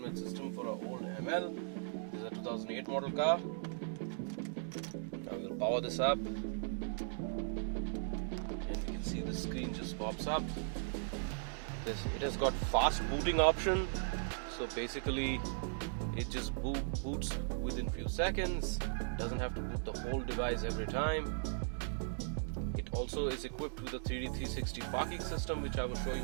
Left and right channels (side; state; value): left; silent; digital silence